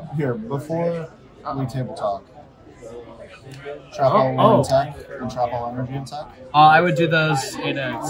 here, before we table talk, trap all attack and trap all energy attack. I would do those in a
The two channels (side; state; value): both; identical; correlation 1.00